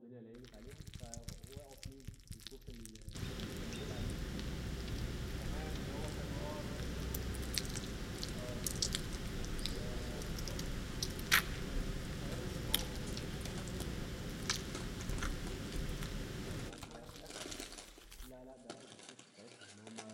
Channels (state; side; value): identical; both; correlation 1.00